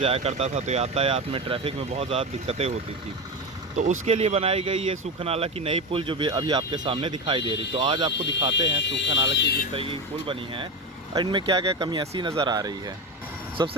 करता था, तो यातायात में ट्रैफिक में बहुत ज़्यादा दिक्कतें होती थी। तो उसके लिए बनाई गई ये सूखा नाला की नई पुल जो भी अभी आपके सामने दिखाई दे रही। तो आज आपको दिखाते हैं सूखा नाला की जिस तरीके की पुल बनी है और इनमें क्या क्या कमी ऐसी नज़र आ रही है।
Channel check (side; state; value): both; normal; correlation 0.19